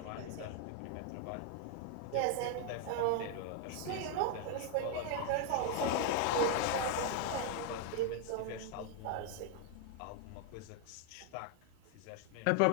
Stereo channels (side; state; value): both; different; correlation 0.00